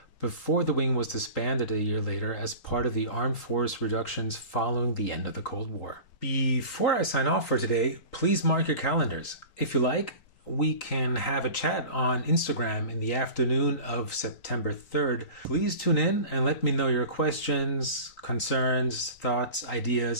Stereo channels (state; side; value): late; right; 3.8 ms